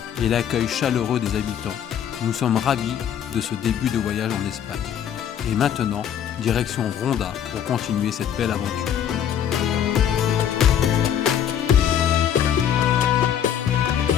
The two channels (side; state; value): right; quieter; 9.3 dB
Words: et l'accueil chaleureux des habitants, nous sommes ravis de ce début de voyage en Espagne. Et maintenant, direction Ronda pour continuer cette belle aventure.